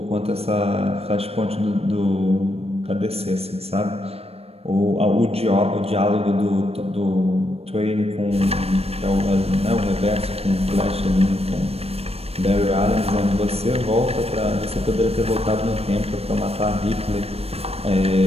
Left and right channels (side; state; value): left; late; 0.29 ms